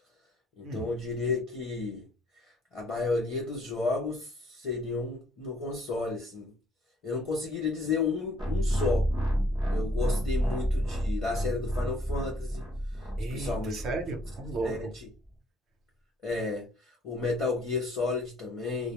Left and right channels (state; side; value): normal; both; correlation 0.63